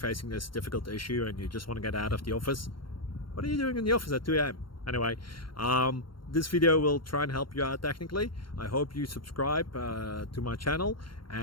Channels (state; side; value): late; right; 0.72 ms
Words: this difficult issue and you just want to get out of the office. What are you doing in the office at 2 a.m.? Anyway, this video will try and help you out technically. I hope you subscribe to my channel